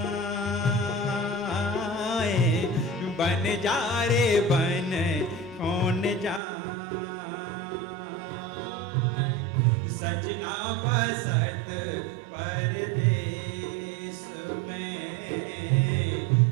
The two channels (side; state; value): left; drops out; at 6.4 s